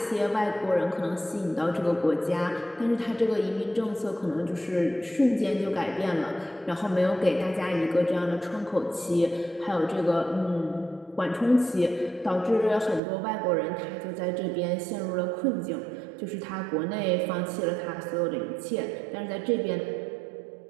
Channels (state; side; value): drops out; left; at 13.0 s